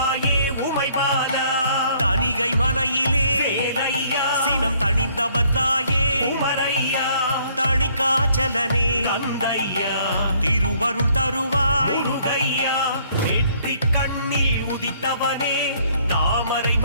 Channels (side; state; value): both; inverted; correlation -0.63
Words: உமைபாலா தணிகை மலையிலே வேலையா சினம் தணிந்தவர் தாயே உமரையா தணிகாச்சலனே தந்தையா திருவருள் தருவாய் முருகையா நெற்றி கண்ணில் உதித்தவனே தாமரை